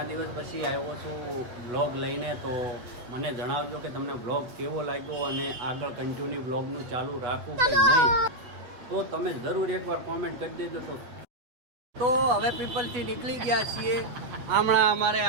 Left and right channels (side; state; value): left; late; 8.1 ms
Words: દિવસ પછી આવ્યો છું વ્લોગ લઈને, તો મને જણાવજો કે તમને વ્લોગ કેવો લાગ્યો અને આગળ કન્ટિન્યુ વ્લોગનું ચાલુ રાખવું કે નહીં, તો તમે જરૂર એકવાર કોમેન્ટ કરી દેજો. તો હવે પીપલથી નીકળી ગયા છીએ. હમણાં અમારે